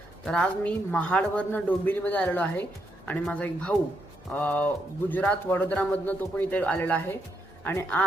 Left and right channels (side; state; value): both; normal; correlation 0.79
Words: तर आज मी महाडवरनं डोंबिवलीमध्ये आलेलो आहे आणि माझा एक भाऊ गुजरात वडोदरामधनं तो पण इथे आलेला आहे. आणि